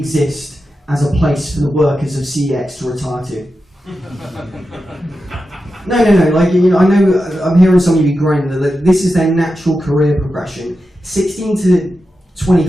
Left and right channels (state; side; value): normal; both; correlation 0.90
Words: as a place for the workers of CEX to retire to. No, like, you know, I know I'm hearing some of you groaning that this is their natural career progression. 16 to